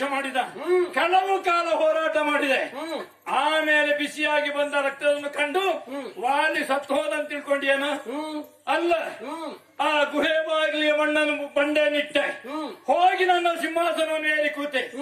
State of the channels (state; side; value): identical; both; correlation 1.00